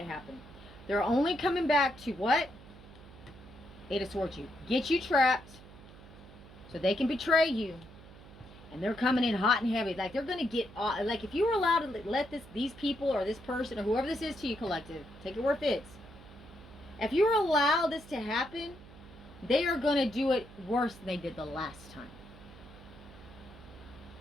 happen. They're only coming back to what? Eight of Swords, you get you trapped so they can betray you, and they're coming in hot and heavy. Like they're gonna get like if you were allowed to let these people or this person or whoever this is to you, collective, take it where it fits. If you were allowed this to happen, they are gonna do it worse than they did the last time.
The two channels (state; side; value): noise; right; hum, 19 dB below the sound